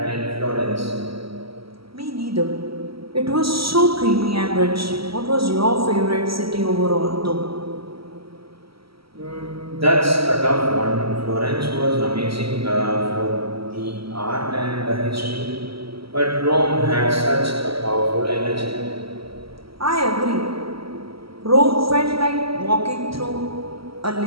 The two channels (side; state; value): left; late; 0.75 ms